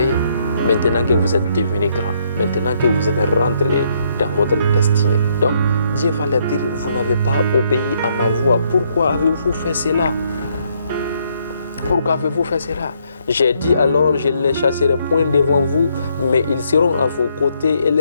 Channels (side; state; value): both; inverted; correlation -0.71